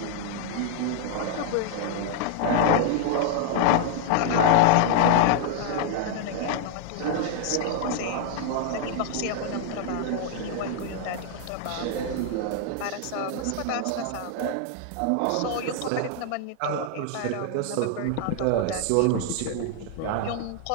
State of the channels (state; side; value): different; both; correlation 0.00